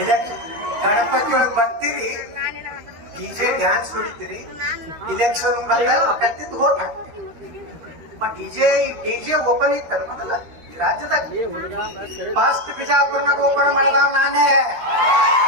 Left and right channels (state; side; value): late; left; 13 ms